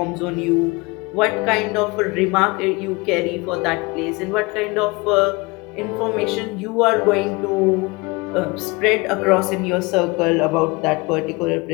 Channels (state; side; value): quieter; right; 25.4 dB